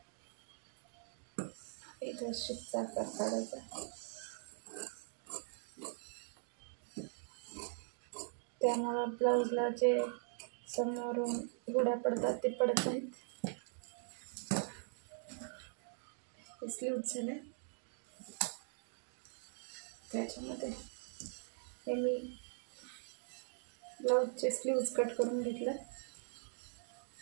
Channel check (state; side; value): silent; left; digital silence